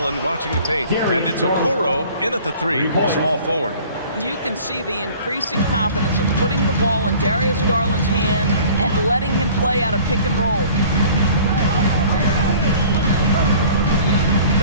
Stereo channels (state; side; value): inverted; both; correlation -0.48